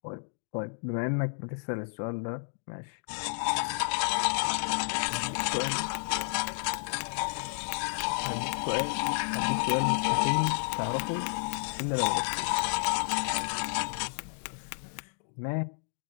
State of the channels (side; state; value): right; silent; digital silence